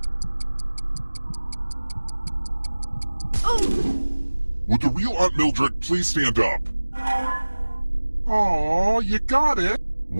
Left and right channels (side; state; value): both; inverted; correlation -1.00